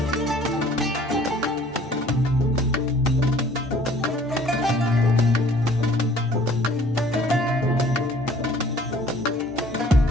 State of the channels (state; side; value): normal; both; correlation 0.54